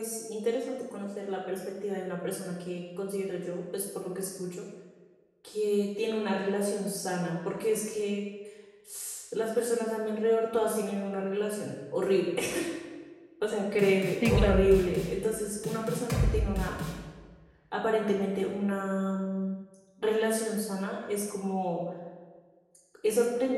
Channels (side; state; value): both; identical; correlation 1.00